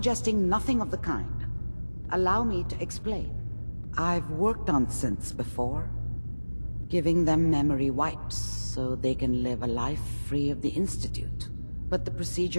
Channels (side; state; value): both; inverted; correlation -1.00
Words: nothing of the kind. Allow me to explain. I've worked on synths before, giving them memory wipes so they can live a life free of the Institute. But the